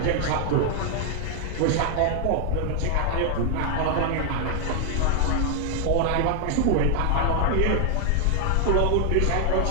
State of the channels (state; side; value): different; both; correlation 0.00